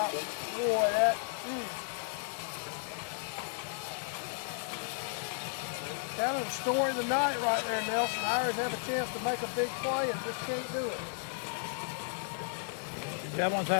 Boy, that. Kind of the story of the night right there, Nelson. The Irish have a chance to make a big play and just can't do it. Dublin's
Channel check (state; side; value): silent; right; digital silence